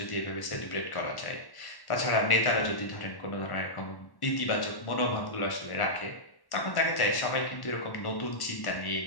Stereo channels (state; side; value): late; right; 1.1 ms